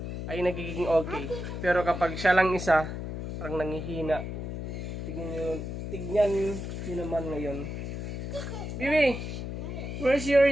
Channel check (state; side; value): noise; left; hum, 6 dB below the sound